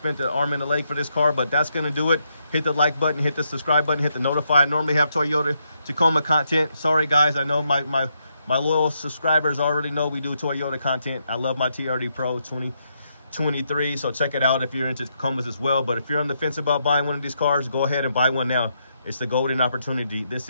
the arm and a leg for this car, but that's gonna do it. Hit the like button, hit the subscribe button, hit the notify. I normally have Toyota Tacoma content. Sorry guys, I know my loyal subscribers already know we do Toyota content. I love my TRD Pro 2023, so check it out if you're into Tacomas as well. But if you're on the fence about buying one of these cars, go ahead and buy one now. It's the golden opportunity. This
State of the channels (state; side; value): inverted; both; correlation -0.78